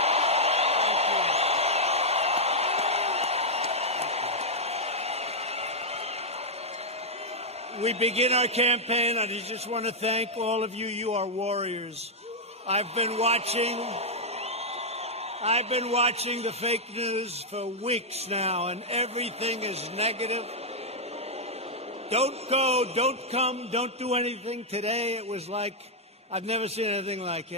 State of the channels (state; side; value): normal; both; correlation -0.04